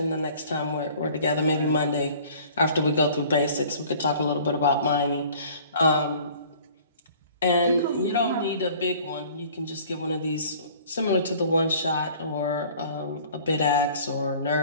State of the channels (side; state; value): both; inverted; correlation -0.50